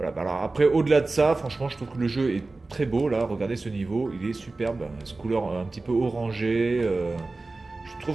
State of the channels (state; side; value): quieter; left; 3.4 dB